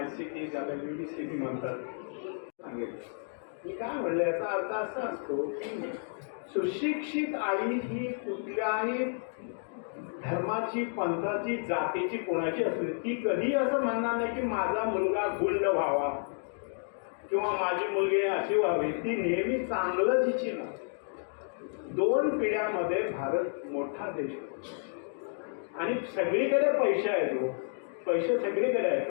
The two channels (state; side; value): silent; right; 57 dB below the other